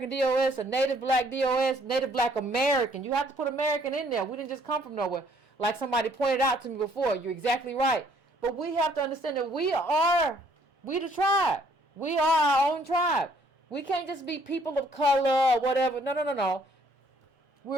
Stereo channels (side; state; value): both; normal; correlation 0.64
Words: DOS, a Native Black DOS, Native Black American. You have to put American in there. We didn't just come from nowhere. Like somebody pointed out to me before. You're exactly right. But we have to understand that we the tribe. We are our own tribe. We can't just be people of color or whatever. No.